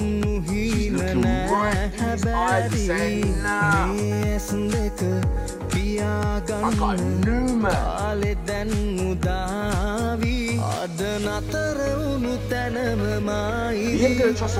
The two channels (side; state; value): both; identical; correlation 1.00